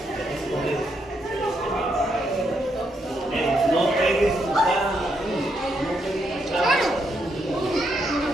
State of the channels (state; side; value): normal; both; correlation 0.78